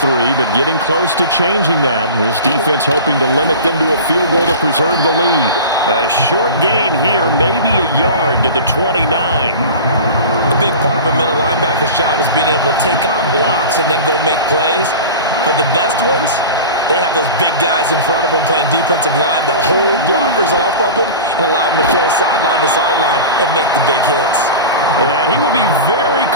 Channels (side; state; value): both; inverted; correlation -0.33